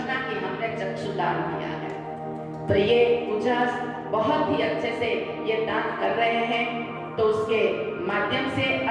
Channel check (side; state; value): both; identical; correlation 1.00